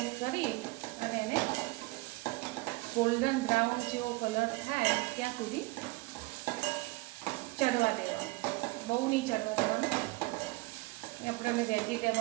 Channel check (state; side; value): quieter; left; 23.2 dB